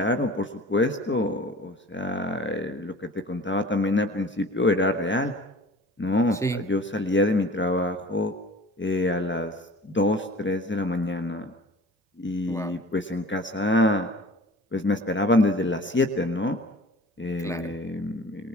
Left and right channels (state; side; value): normal; both; correlation 0.44